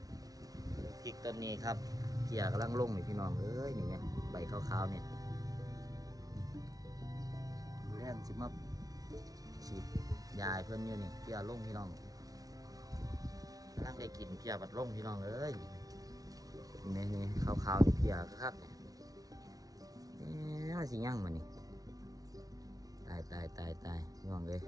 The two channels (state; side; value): late; left; 0.18 ms